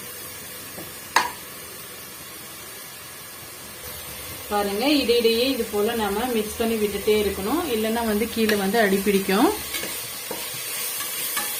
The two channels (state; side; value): identical; both; correlation 1.00